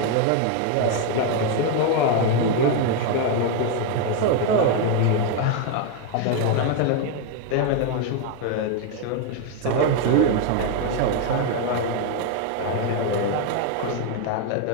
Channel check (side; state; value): both; different; correlation 0.01